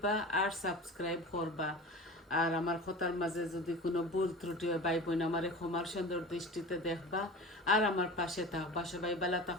আর সাবস্ক্রাইব করবা। আর আমার কথার মাঝে যদি কোনো ভুল ত্রুটি হয় ভাই বোন আমার ক্ষমার সুন্দর দৃষ্টিতে দেখবা আর আমার পাশে থাকবা। সবাই ভালো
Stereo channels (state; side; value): normal; both; correlation 0.34